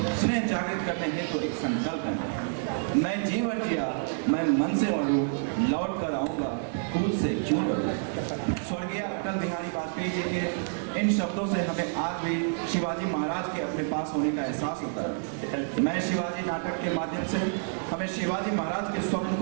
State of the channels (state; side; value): silent; left; digital silence